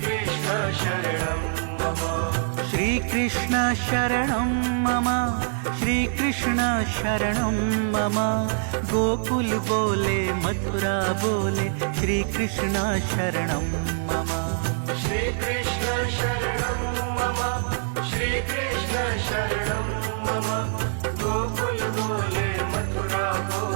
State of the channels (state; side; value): silent; left; 55 dB below the other